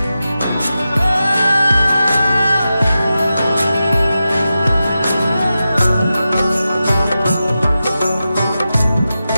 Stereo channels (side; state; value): both; inverted; correlation -0.92